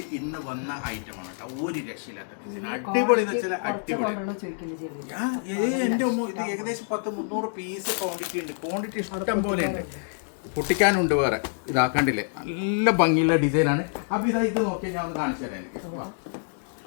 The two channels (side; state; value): right; silent; digital silence